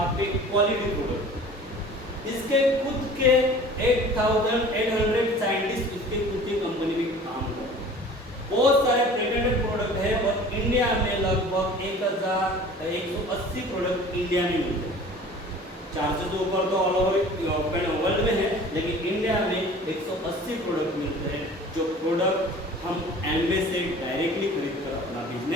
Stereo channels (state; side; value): normal; both; correlation 0.44